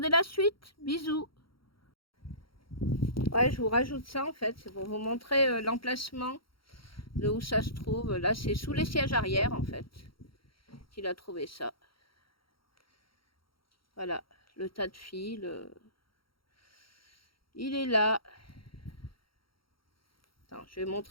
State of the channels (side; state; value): right; late; 0.74 ms